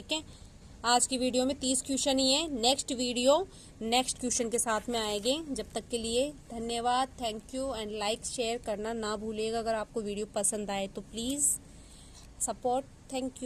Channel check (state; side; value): identical; both; correlation 1.00